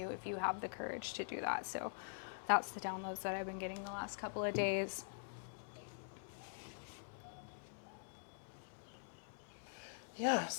if you have the courage to do that. So that's the downloads that I've been getting the last couple of days. Yeah,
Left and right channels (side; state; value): right; silent; digital silence